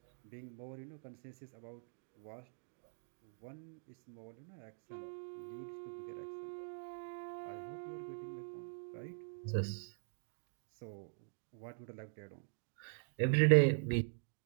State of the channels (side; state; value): left; silent; digital silence